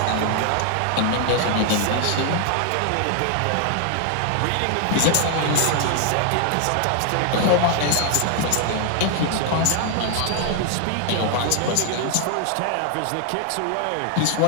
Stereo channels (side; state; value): both; different; correlation 0.00